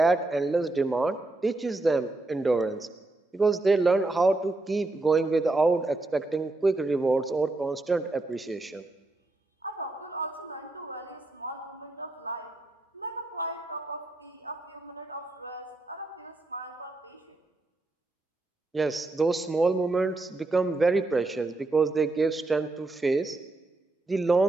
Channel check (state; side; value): quieter; left; 3.0 dB